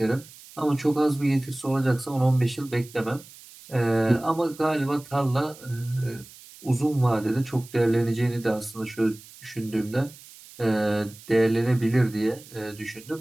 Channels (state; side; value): noise; right; hiss, 20 dB below the sound